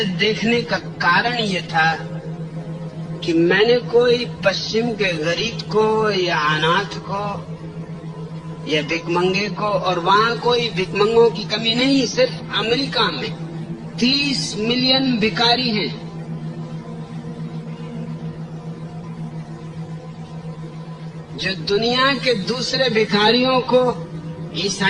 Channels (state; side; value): identical; both; correlation 1.00